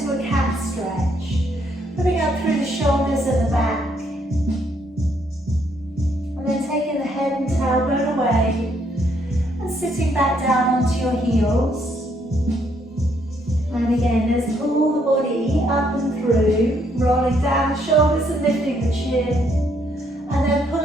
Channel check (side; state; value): both; normal; correlation 0.71